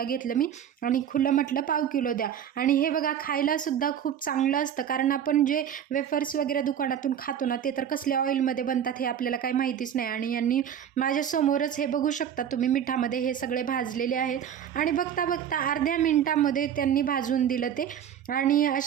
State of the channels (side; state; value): left; quieter; 9.1 dB